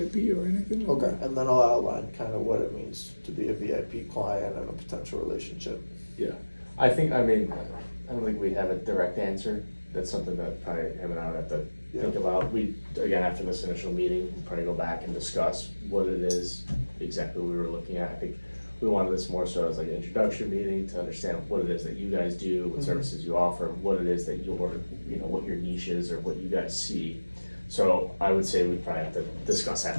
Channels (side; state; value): both; inverted; correlation -1.00